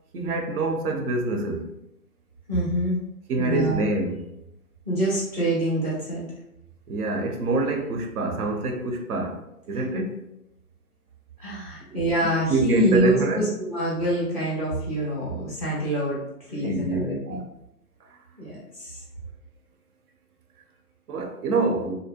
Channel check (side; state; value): both; normal; correlation 0.16